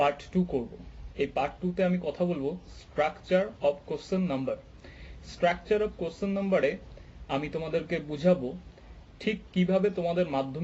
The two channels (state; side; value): identical; both; correlation 1.00